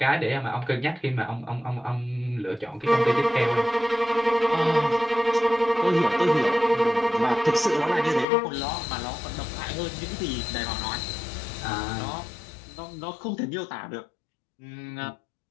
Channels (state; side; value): drops out; right; at 8.2 s